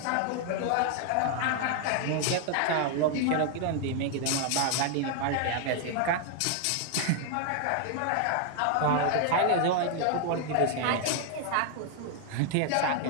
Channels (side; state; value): both; different; correlation 0.00